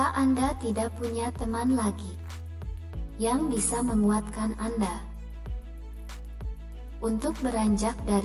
Anda tidak punya teman lagi yang bisa menguatkan Anda untuk beranjak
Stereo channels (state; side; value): identical; both; correlation 1.00